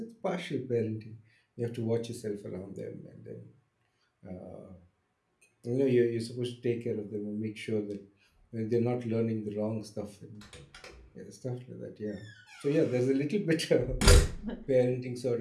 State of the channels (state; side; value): identical; both; correlation 1.00